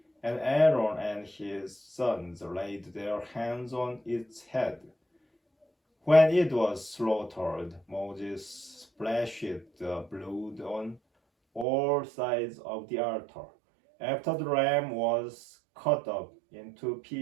and Aaron and his sons laid their hands on its head. When it was slaughtered, Moses splashed the blood on all sides of the altar. After the ram was cut up into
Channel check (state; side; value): drops out; left; at 11.7 s